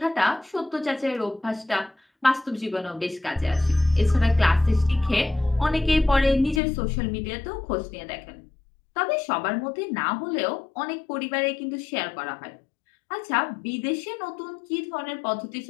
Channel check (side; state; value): right; drops out; at 6.6 s